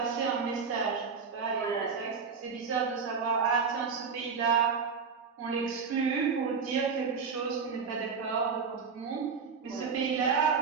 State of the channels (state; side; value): quieter; left; 5.6 dB